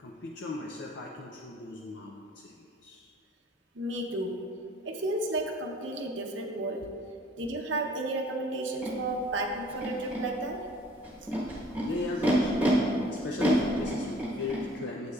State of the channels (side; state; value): both; normal; correlation 0.53